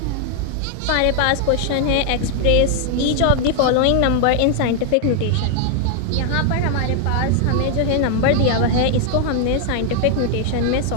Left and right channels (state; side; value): different; both; correlation 0.00